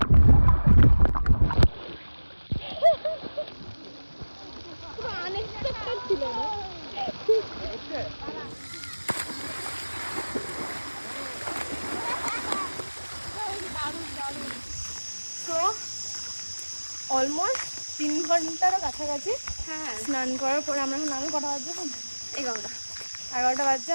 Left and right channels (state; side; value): inverted; both; correlation -1.00